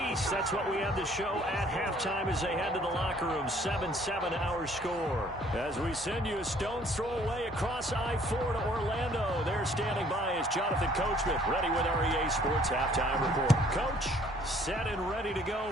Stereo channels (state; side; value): normal; both; correlation 0.59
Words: That's what we have to show at halftime as they head to the locker room. 7-7 our score. As we send you a stone's throw away across I-4 to Orlando. There standing by is Jonathan Coachman, ready with our EA Sports Halftime Report. Coach, set and ready to go